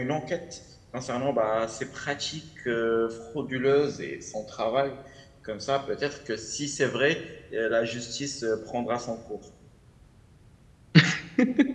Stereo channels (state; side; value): identical; both; correlation 1.00